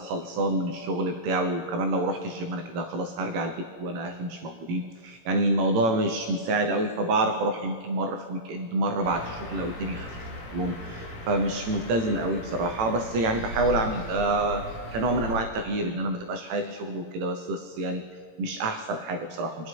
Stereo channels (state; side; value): late; left; 18 ms